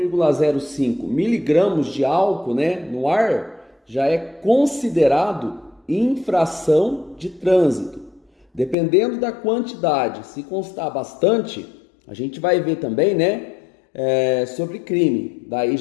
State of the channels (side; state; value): right; drops out; at 8.8 s